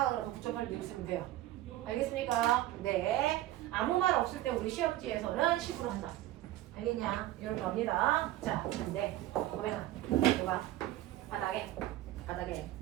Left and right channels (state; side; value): quieter; left; 14.9 dB